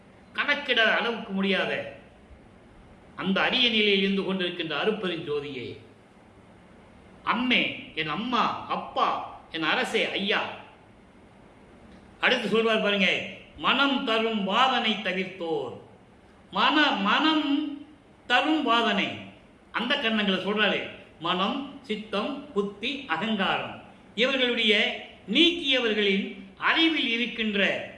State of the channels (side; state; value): both; identical; correlation 1.00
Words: கணக்கிட அளவுக்கு முடியாத அந்த அரிய நிலையில் இருந்து கொண்டிருக்கின்ற அருப்பெரும் ஜோதியே, அம்மே, என் அம்மா, அப்பா, என் அரசே, ஐயா. அடுத்து சொல்வார் பாருங்க, மனம் தரும் வாதனை தவிர்த்தோர். மனம் தரும் வாதனை, அந்த கண்ணங்களை சொல்றாரு. மனம், சித்தம், புத்தி, அகங்காரம் இவர்களுடைய நீக்கியவர்களின் அறிவில் இருக்கின்ற,